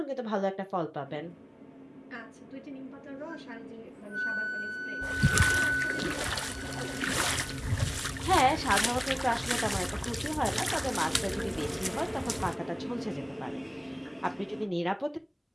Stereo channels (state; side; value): identical; both; correlation 1.00